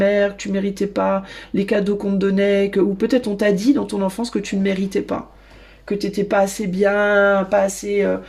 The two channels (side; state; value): both; identical; correlation 1.00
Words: que tu méritais pas les cadeaux qu'on te donnait, ou peut-être on t'a dit dans ton enfance que tu ne méritais pas. Que t'étais pas assez bien, pas assez